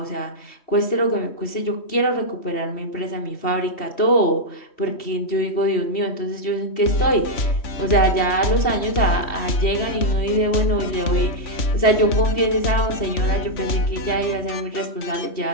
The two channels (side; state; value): right; late; 3.1 ms